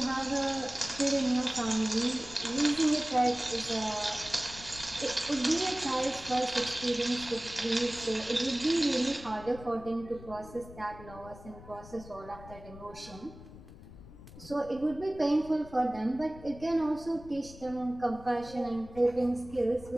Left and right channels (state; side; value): noise; left; rumble, 17 dB below the sound